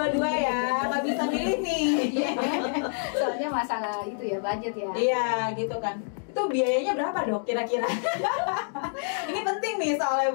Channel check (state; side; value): silent; right; digital silence